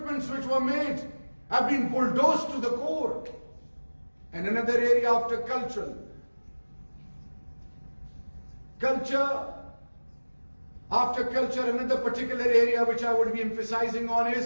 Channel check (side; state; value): both; inverted; correlation -1.00